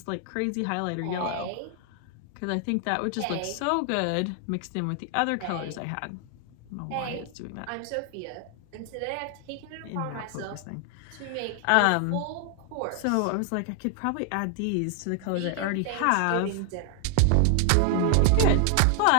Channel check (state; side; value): different; both; correlation 0.00